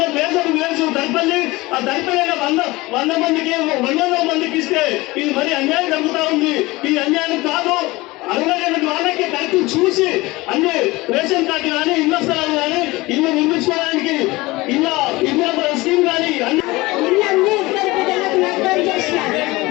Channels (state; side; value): quieter; right; 21.1 dB